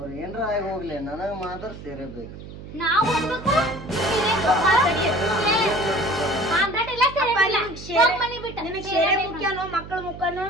ಏನ್ರ ಆಗಿ ಹೋಗ್ಲಿ, ನನಗ ಮಾತ್ರ ಸೇರಬೇಕು. ನಾವು ನಿನಗ್ ಸೇರೆ ಮುಖ್ಯನೋ ಮಕ್ಕಳ ಮುಖನೋ?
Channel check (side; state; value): right; noise; hum, 13 dB below the sound